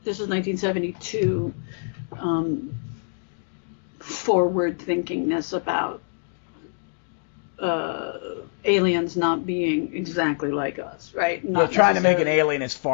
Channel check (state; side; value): silent; right; digital silence